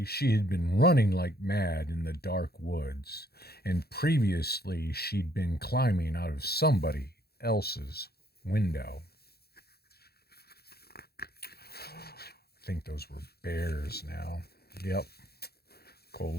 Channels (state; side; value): late; right; 0.46 ms